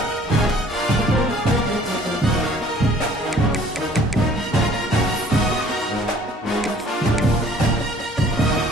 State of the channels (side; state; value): both; normal; correlation 0.55